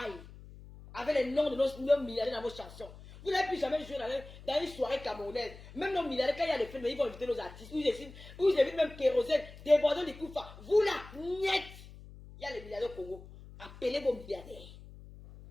Avec les noms de nos milliardaires dans vos chansons. Vous n'avez plus jamais joué dans une soirée camerounaise. Même nos milliardaires, quand il y a des films, ils vont inviter nos artistes. Vous invitent même Kérosène, débordant des coups. Vous là, niet. Il y a les milliardaires au Congo. Appelez vos milliardaires.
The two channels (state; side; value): noise; left; hum, 17 dB below the sound